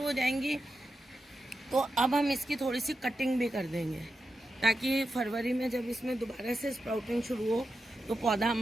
हो जाएंगी तो अब हम इसकी थोड़ी सी कटिंग भी कर देंगे, ताकि फरवरी में जब इसमें दोबारा से स्प्राउटिंग शुरू हो तो पौधा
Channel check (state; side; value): normal; both; correlation 0.89